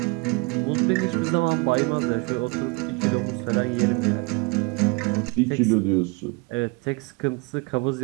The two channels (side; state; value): left; quieter; 27.8 dB